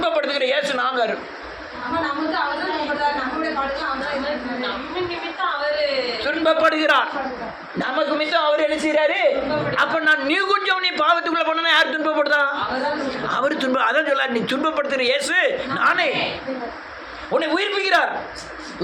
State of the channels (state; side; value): identical; both; correlation 1.00